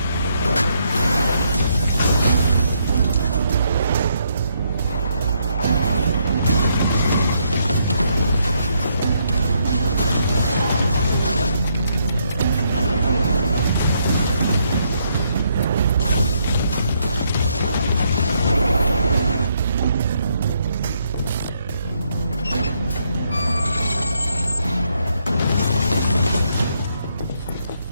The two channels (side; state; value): both; inverted; correlation -0.74